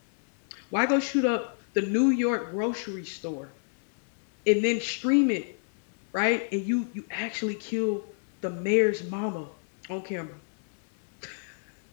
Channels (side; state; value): right; silent; 59 dB below the other